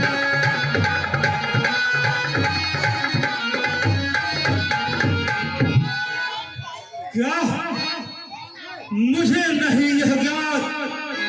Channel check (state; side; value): identical; both; correlation 1.00